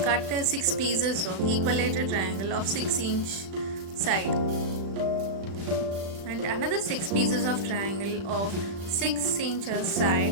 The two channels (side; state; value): left; late; 36 ms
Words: cut 6 pieces of equilateral triangle of 6-inch side and another 6 pieces of triangle of 6 inches